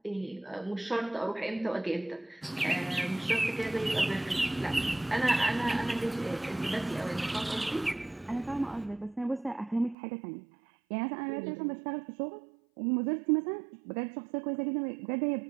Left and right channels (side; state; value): left; drops out; at 10.0 s